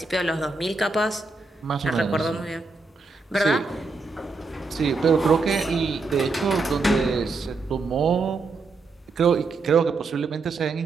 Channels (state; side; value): quieter; left; 3.9 dB